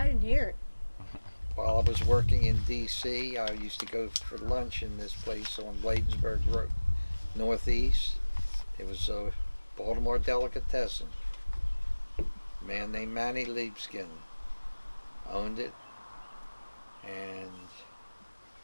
didn't hear it. While I was working in D.C., I used to go for lunch in this place on Bladensburg Road, Northeast. It was a Baltimore delicatessen. A man named Manny Liebskin owned it. And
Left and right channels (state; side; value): inverted; both; correlation -1.00